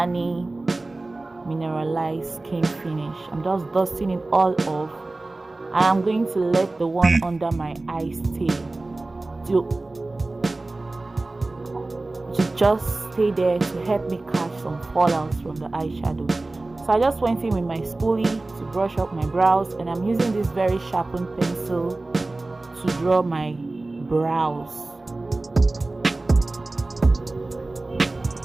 mineralized skin finish. I'm just dusting it all off, and I'm going to let the one under my eye stay to just stay there to help me catch some fallouts from the eyeshadow. So I just went in with my spoolie to brush up my brows, and I'm using this very sharpened pencil to draw my brows.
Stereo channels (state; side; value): quieter; left; 3.1 dB